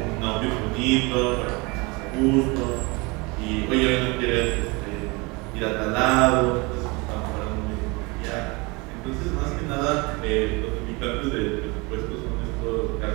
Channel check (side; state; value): left; quieter; 26.7 dB